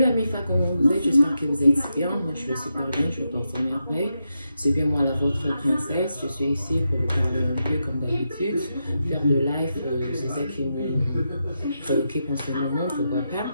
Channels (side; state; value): both; inverted; correlation -0.86